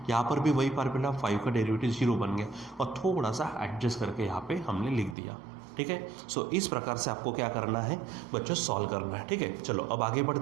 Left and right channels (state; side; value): drops out; left; at 5.2 s